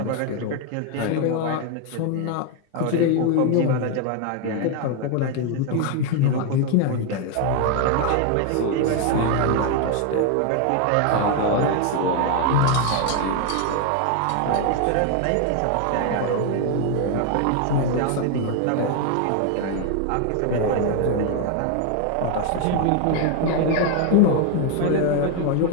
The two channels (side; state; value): both; different; correlation 0.01